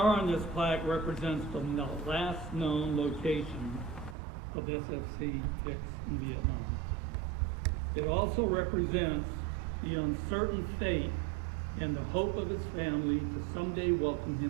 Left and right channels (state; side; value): drops out; left; at 4.2 s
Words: on this plaque represents the last known location of SFC Hicks in Vietnam. It also represents the uncertain fate and the hope of his family to someday welcome